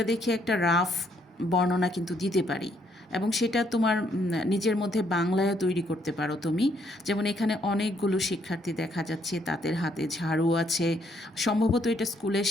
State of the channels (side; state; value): both; normal; correlation 0.70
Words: দেখে একটা রাফ বর্ণনা কিন্তু দিতে পারি, এবং সেটা তোমার নিজের মধ্যে বাংলায়ও তৈরি করতে পারো তুমি। যেমন এখানে অনেকগুলো শিক্ষার্থী দেখা যাচ্ছে, তাদের হাতে ঝাড়ু আছে, সম্ভবত এটা স্কুলের